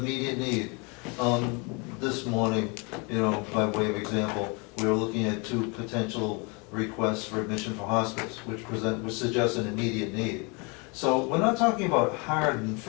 need. This morning, you know, by way of example, we were looking at 2 potential requests for admission for hospice, which suggest an immediate need. So we're not talking about hard and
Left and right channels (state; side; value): quieter; right; 30.8 dB